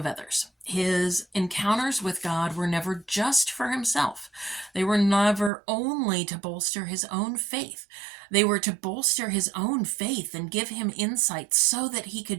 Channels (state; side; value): drops out; left; at 5.5 s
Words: others. His encounters with God were never just for himself. They were never only to bolster his own faith. They were to bolster his own faith and give him insight so that he